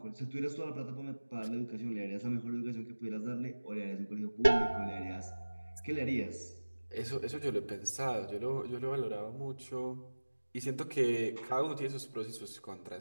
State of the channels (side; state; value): both; inverted; correlation -1.00